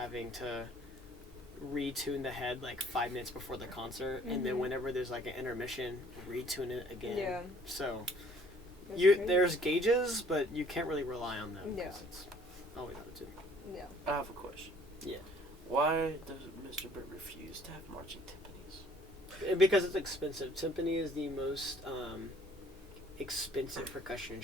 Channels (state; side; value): normal; both; correlation 0.57